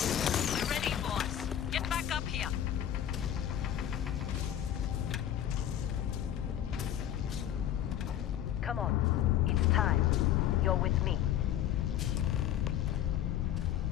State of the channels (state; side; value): quieter; right; 10.9 dB